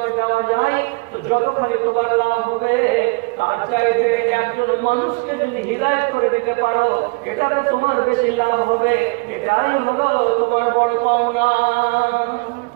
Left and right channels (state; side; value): quieter; left; 28.8 dB